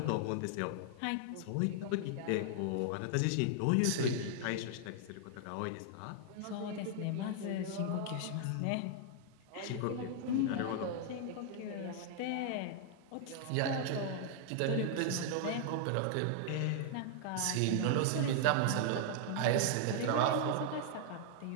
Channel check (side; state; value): both; different; correlation -0.01